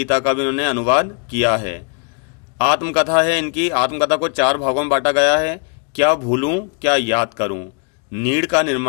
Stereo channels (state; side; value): quieter; right; 36.4 dB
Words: का भी इन्होंने अनुवाद किया है। आत्मकथा है इनकी। आत्मकथा को 4 भागों में बांटा गया है। क्या भूलूं क्या याद करूं, नीड़ का